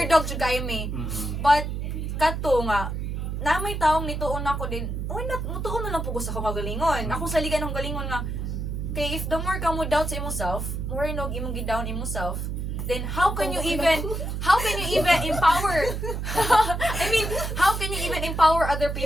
jud kayo me. Mm-mm. But, kato nga, na may taong nituon ako din, why not, mutuon na lang po ko sa kagalingon. Ako sa liga ng galingon nga, kay if the more ka mo doubt sa imong self, more nog imong gi-down imong self, then how can you even empower I mean, how can you even empower other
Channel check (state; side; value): noise; right; hum, 3 dB below the sound